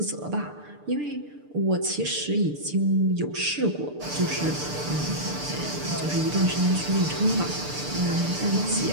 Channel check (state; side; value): late; left; 6.7 ms